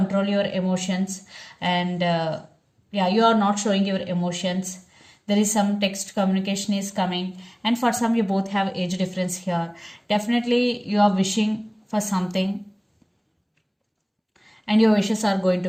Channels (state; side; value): identical; both; correlation 1.00